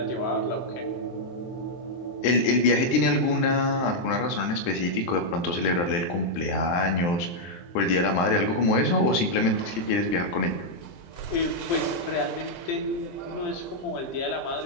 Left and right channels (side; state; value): right; late; 23 ms